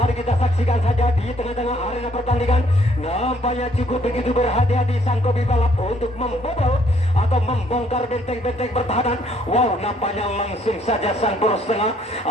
kita saksikan saja di tengah-tengah arena pertandingan. Nampaknya cukup begitu berhati-hati sang kopi balap untuk membobol atau membongkar benteng-benteng pertahanan. Wow, nampaknya langsung saja sang poros tengah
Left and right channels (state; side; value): normal; both; correlation 0.65